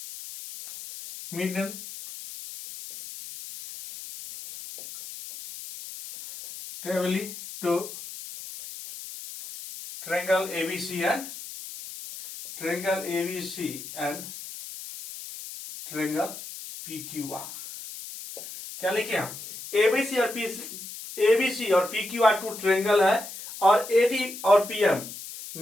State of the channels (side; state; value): left; noise; hiss, 12 dB below the sound